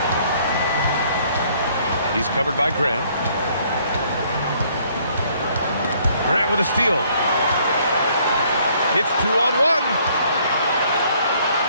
He's covered by Grant. Grant with a steal. It's 2-on-1.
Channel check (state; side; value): inverted; both; correlation -0.63